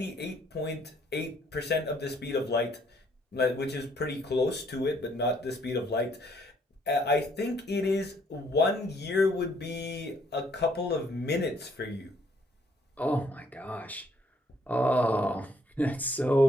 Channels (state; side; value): normal; both; correlation 0.66